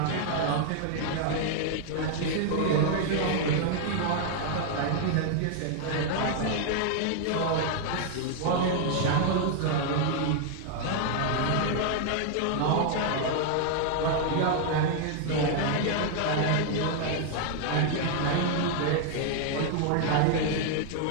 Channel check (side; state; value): both; different; correlation 0.00